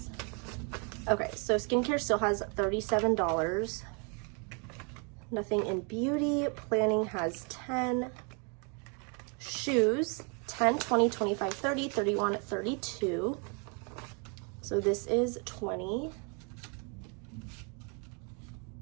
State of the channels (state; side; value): quieter; left; 35.9 dB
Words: Okay, so skincare still has $37. Nothing in beauty. Planning has 10. Shoes, 10, 20, 25, 30, 31, 32. So this is 20.